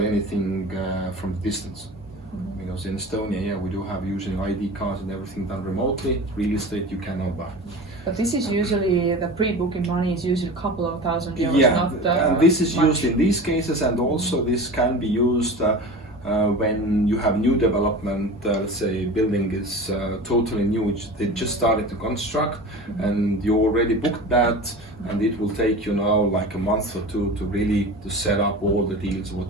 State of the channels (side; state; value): both; normal; correlation 0.33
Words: anything from distance. Because in Estonia, yeah, we do have using ID cards and everything done remotely. Real estate you cannot buy. But this is usually, the pre-booking money is usually a couple of thousand euros, yeah, not and this is much. used in these cases, and also this can be used When you have new development, let's say building is totally new, they just started to construct, and you already booked that, and it will take you now like a month or two to really to set up all the deals